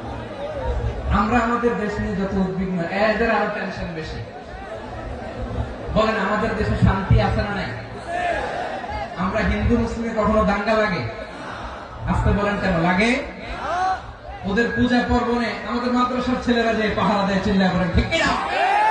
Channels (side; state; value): both; identical; correlation 1.00